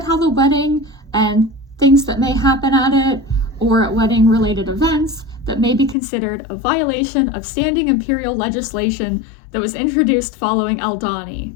how the wedding and things that may happen at it, or at wedding related events that may be considered a violation of standing imperial legislation that was introduced following Aldhani.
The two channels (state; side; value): drops out; right; at 6.0 s